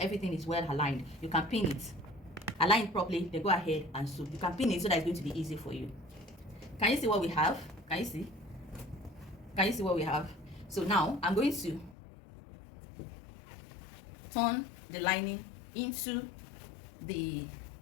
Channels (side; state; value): right; drops out; at 12.0 s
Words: is well aligned. You can pin it. Align it properly, then go ahead and sew. You can pin it so that it's going to be easy for you. Can you see what we have? Can you see? Can you see what we have? So now I'm going to turn the lining into the